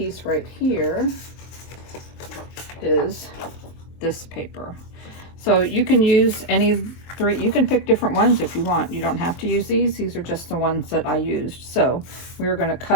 right here is this paper. So you can use any 3, you can pick different ones if you want. You don't have to use these. These are just the ones that I used. So we're going to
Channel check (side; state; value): right; late; 23 ms